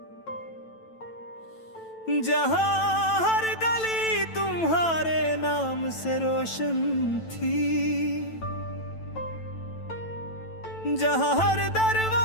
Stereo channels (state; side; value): late; right; 9.1 ms